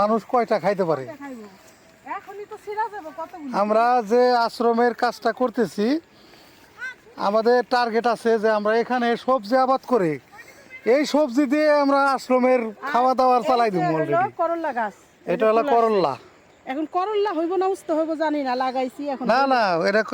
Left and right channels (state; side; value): identical; both; correlation 1.00